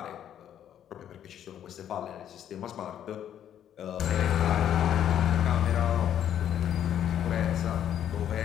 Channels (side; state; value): right; quieter; 10.1 dB